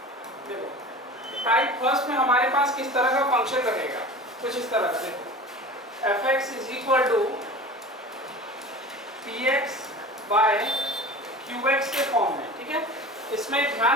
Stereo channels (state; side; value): normal; both; correlation 0.36